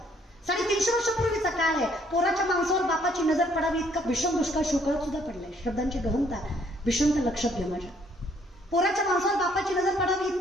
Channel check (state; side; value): normal; both; correlation 0.65